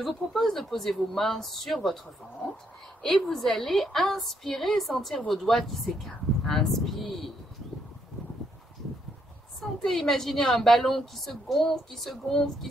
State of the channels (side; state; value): both; normal; correlation 0.75